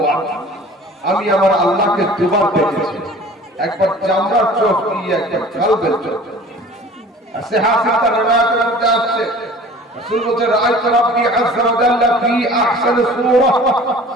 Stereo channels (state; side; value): normal; both; correlation 0.45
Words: আমি আমার আল্লাহকে দুবার দেখেছি, একবার চামড়ার চোখ দিয়ে, একবার কালবের চোখ। আর সিহাহাত রিওয়ায়াতের মধ্যে আসছে রাসূল বলেন রাআইতু রাব্বি আযজা ওয়া জাল্লা ফি আহসানি সূরা